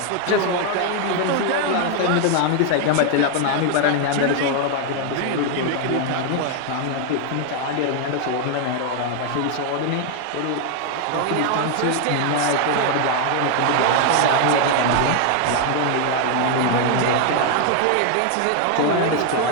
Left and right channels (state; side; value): different; both; correlation 0.00